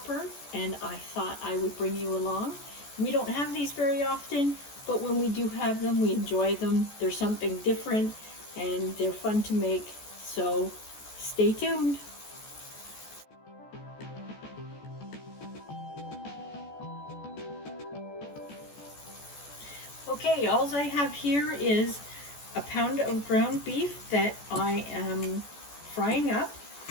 and I thought I would bring you along. We don't have these very often, but when we do have them, we enjoy them. They're something different and they're fun to make, so stay tuned. Okay, all I have here is a pound of ground beef that I am frying up.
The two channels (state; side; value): late; right; 14 ms